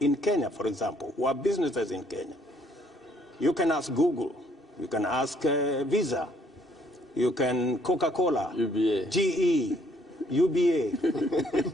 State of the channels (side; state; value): both; normal; correlation 0.65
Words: Kenya, for example, who have businesses in Kenya. You can ask Google, you can ask Visa, you can Coca-Cola, UBA. GE,